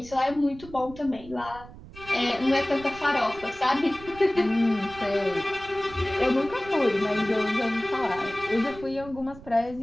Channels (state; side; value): noise; right; rumble, 17 dB below the sound